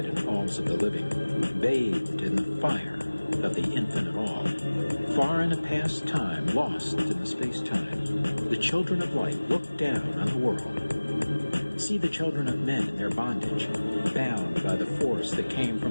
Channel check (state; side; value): inverted; both; correlation -1.00